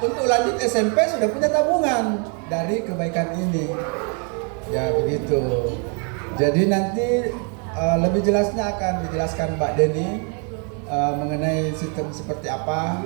lanjut SMP sudah punya tabungan dari kebaikan ini. Ya begitu. Jadi nanti lebih jelasnya akan dijelaskan Mbak Deni mengenai sistem seperti apa.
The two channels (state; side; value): quieter; left; 38.2 dB